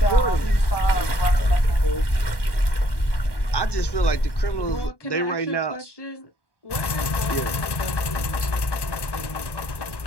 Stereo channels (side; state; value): right; late; 1.1 ms